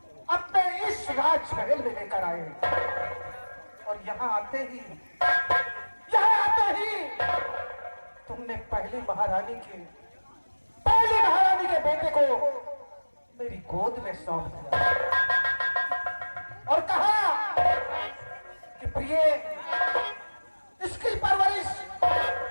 अपने इस राजमहल में लेकर आए और यहाँ आते ही तुमने पहली महारानी के बेटे को मेरी गोद में सौंप दिया और कहा कि प्रिय, इसकी परवरिश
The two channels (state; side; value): inverted; both; correlation -1.00